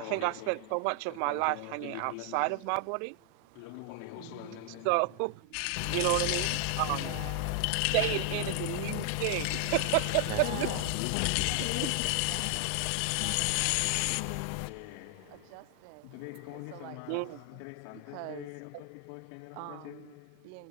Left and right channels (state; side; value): different; both; correlation 0.00